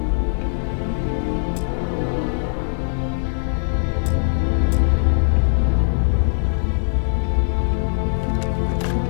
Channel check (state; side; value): silent; right; digital silence